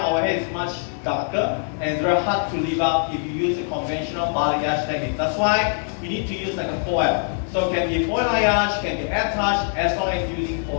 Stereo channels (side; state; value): right; silent; 64 dB below the other